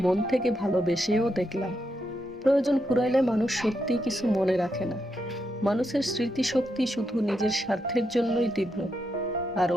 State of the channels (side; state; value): both; normal; correlation 0.83